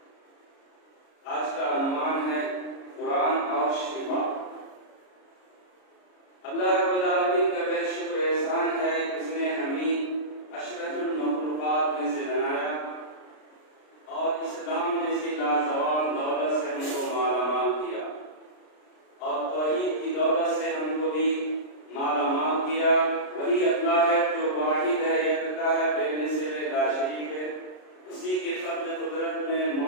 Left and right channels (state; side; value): late; right; 33 ms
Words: आज का अनुमान है कुरान और शिफा। अल्लाह रब्बुल आलमीन का बेहद शुक्र एहसान है कि उसने हमें अशरफुल मखलूक़ात में से बनाया और इस्लाम जैसी लाजवाब दौलत से हमको मालामाल किया और तौहीद की दौलत से हमको भी मालामाल किया। वही अल्लाह है जो वाहिद है, एकता है, बेमिसाल ला शरीक है। उसी के फज़्ल कुदरत में